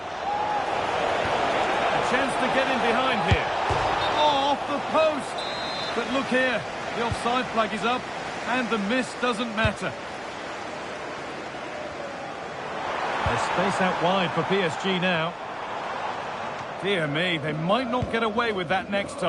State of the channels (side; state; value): both; identical; correlation 1.00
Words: chance to get in behind here. Oh, off the post. But look here, the offside flag is up and the miss doesn't matter. There's space out wide for PSG now. Dear me, they might not get away with that next